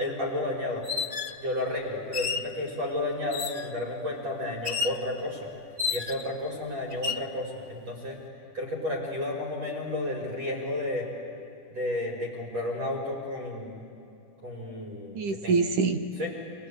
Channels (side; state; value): left; late; 10 ms